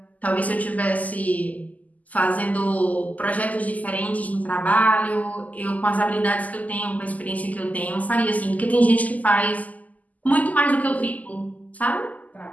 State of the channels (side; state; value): right; late; 0.077 ms